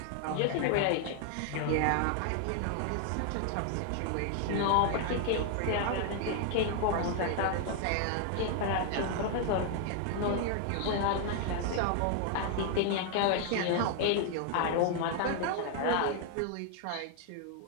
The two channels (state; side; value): different; both; correlation 0.00